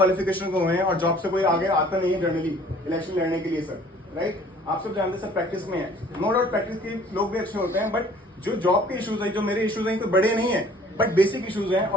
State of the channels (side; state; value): both; normal; correlation 0.53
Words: को हुए हैं और जॉब से कोई आगे आता नहीं है जनरली इलेक्शन लड़ने के लिए सर, राइट? आप सब जानते हैं सर प्रैक्टिस में है, नो डाउट प्रैक्टिस के लोग भी अच्छे होते हैं, बट जो जॉब के इश्यूज है, जो मेरे इश्यूज हैं, तो बड़े नहीं है बट बेसिक इश्यूज हैं